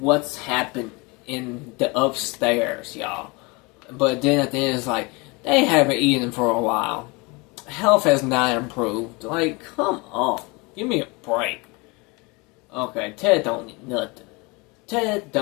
happened in the upstairs, y'all. But then at the end it's like, they haven't eaten for a while. Health has not improved. Like, come on. Give me a break. Okay, Ted don't need nothing. Ted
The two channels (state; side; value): quieter; right; 27.0 dB